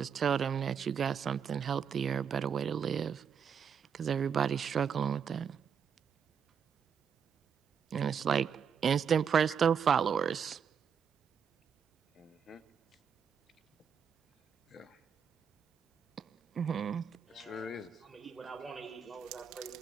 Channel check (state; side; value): quieter; left; 7.1 dB